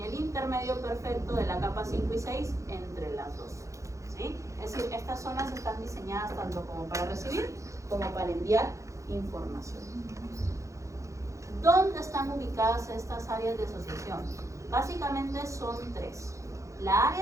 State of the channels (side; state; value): left; late; 0.15 ms